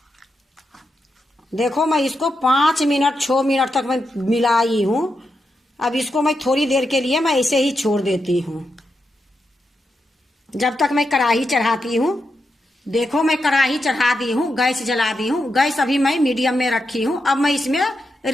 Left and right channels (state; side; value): normal; both; correlation 0.86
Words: देखो, मैं इसको 5 मिनट 6 मिनट तक मैं मिलाई हूँ। अब इसको मैं थोड़ी देर के लिए मैं ऐसे ही छोड़ देती हूँ, जब तक मैं कढ़ाई चढ़ाती हूँ। देखो, मैं कढ़ाई चढ़ा दी हूँ, गैस जला दी हूँ। गैस अभी मैं मीडियम में रखी हूँ। अब मैं इसमें